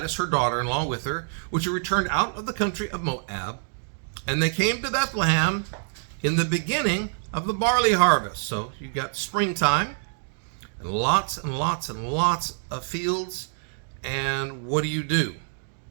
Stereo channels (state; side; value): silent; left; digital silence